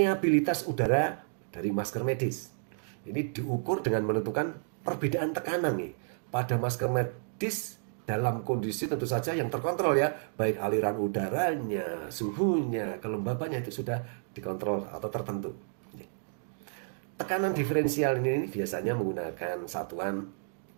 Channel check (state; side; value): silent; left; digital silence